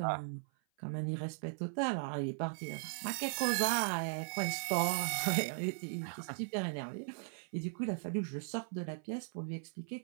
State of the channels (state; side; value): silent; left; 52 dB below the other